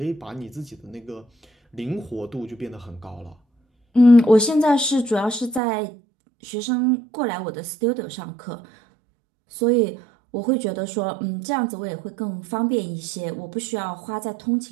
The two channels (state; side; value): drops out; left; at 5.6 s